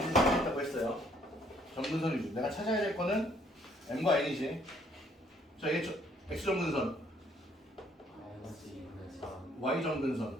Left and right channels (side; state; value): both; normal; correlation 0.65